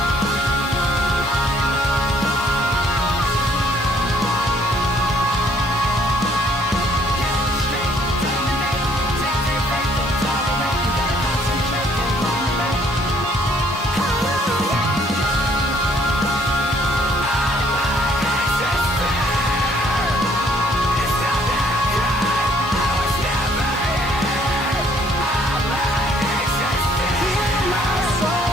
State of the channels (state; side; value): normal; both; correlation 0.63